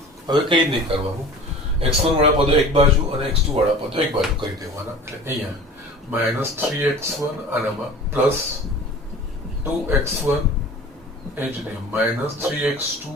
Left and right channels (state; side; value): normal; both; correlation 0.41